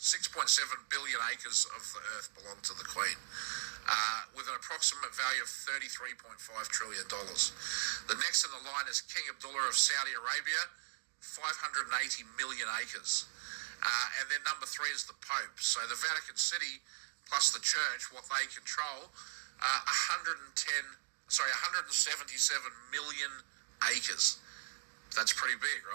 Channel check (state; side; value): silent; left; digital silence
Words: billion acres of the earth belong to the Queen, with an approximate value of $33.5 trillion. The next in the line is King Abdullah of Saudi Arabia, 580 million acres. And then number 3 is the Pope. So the Vatican City plus the Church, what they control, 177 million acres. That's pretty big,